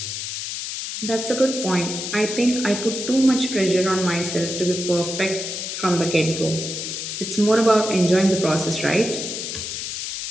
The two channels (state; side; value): noise; left; hiss, 5 dB below the sound